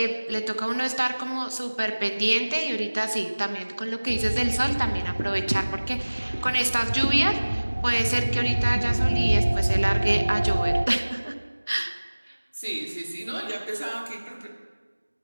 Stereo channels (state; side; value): inverted; both; correlation -1.00